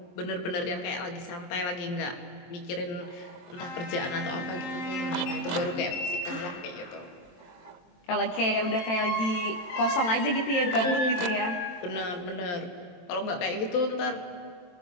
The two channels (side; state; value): right; late; 22 ms